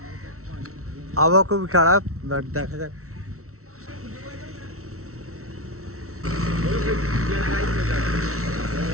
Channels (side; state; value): left; late; 0.63 ms